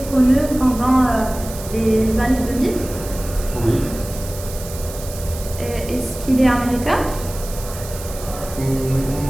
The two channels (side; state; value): right; noise; hiss, 13 dB below the sound